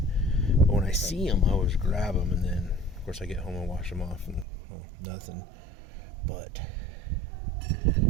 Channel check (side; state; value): left; drops out; at 4.5 s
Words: But when I see them, I always grab them, and then, of course, I get home and wash them off, and, well, nothing. But